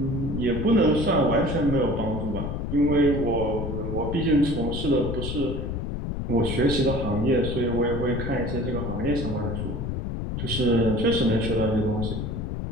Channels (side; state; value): left; noise; rumble, 3 dB below the sound